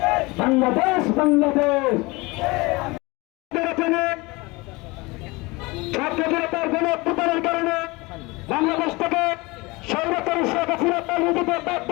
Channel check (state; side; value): quieter; right; 23.9 dB